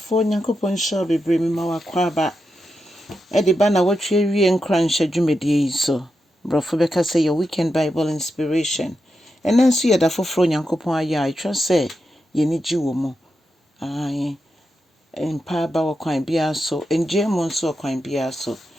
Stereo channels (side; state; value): both; normal; correlation 0.87